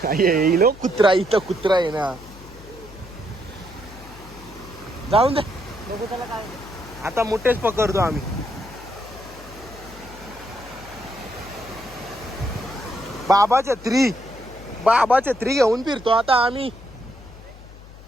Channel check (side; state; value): left; noise; hum, 18 dB below the sound